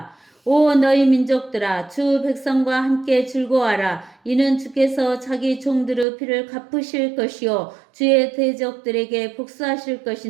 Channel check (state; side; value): drops out; left; at 6.1 s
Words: 오 너희 민족들아 주 백성과 함께 즐거워하라. 이는 주께서 자기 종들의 피를 갚으실 것이요 주의 대적들에게 복수하실